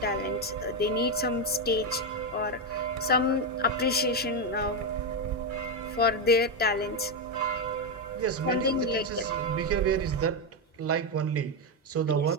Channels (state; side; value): normal; both; correlation 0.07